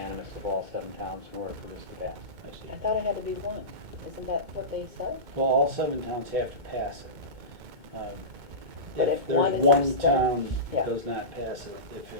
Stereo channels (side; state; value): left; late; 2.2 ms